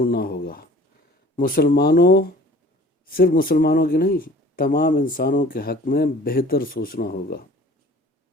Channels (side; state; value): both; normal; correlation 0.48